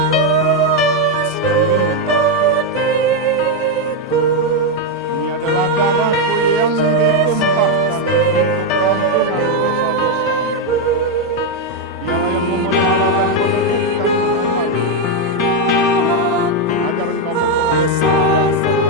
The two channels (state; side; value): normal; both; correlation 0.03